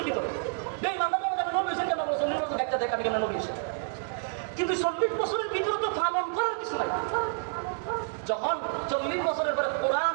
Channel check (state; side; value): silent; left; 59 dB below the other